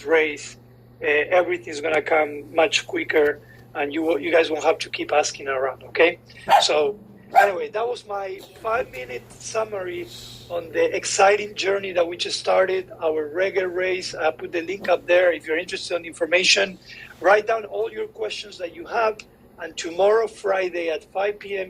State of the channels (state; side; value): identical; both; correlation 1.00